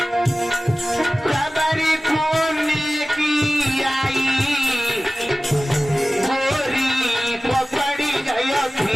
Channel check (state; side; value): normal; both; correlation 0.97